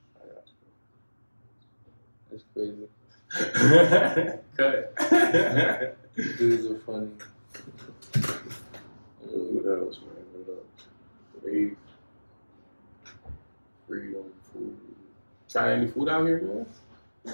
I got That's crazy. you. Cut. Dudes are funny. What else, man? What else? Faith, freedom, food. Try any food out here, man?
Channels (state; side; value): inverted; both; correlation -1.00